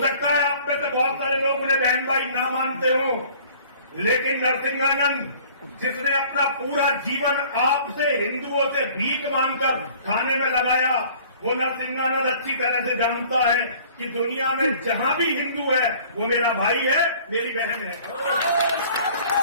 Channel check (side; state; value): both; inverted; correlation -0.52